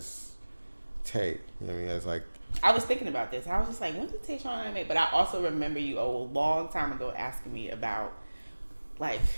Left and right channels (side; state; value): both; inverted; correlation -1.00